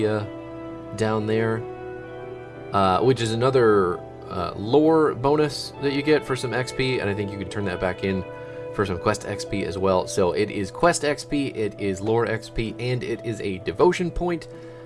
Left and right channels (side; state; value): both; identical; correlation 1.00